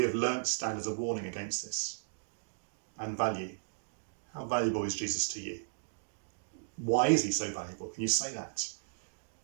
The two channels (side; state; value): left; silent; digital silence